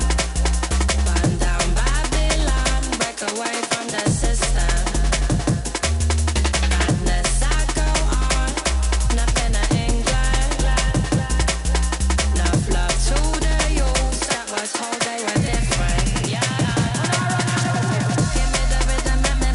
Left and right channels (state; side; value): identical; both; correlation 1.00